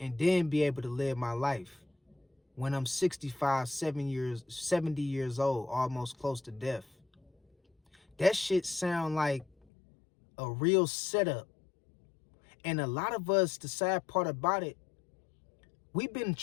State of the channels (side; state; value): right; drops out; at 9.5 s